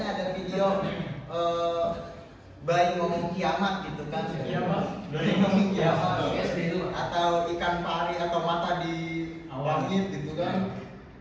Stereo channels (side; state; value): both; identical; correlation 1.00